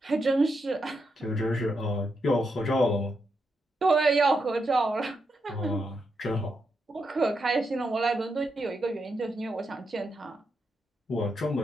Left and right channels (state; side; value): normal; both; correlation 0.83